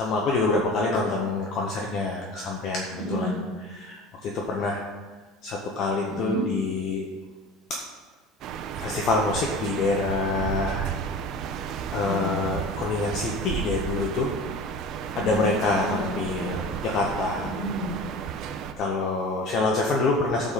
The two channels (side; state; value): both; normal; correlation 0.37